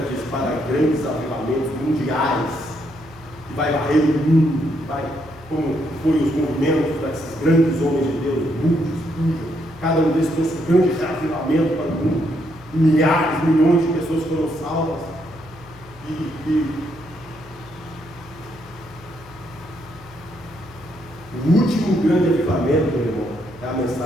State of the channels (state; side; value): noise; left; hum, 21 dB below the sound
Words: diz para grandes avivamentos mundiais, que vai varrer o mundo, vai, como foi os movimentos desses grandes homens de Deus, muitos, cada um desses trouxe um grande avivamento para o mundo, milhares, milhões de pessoas foram salvas, o último grande avivamento, meu irmão, é a